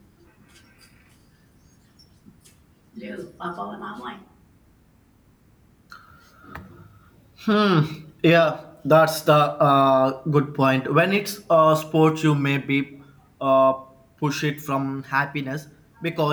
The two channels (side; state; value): both; identical; correlation 1.00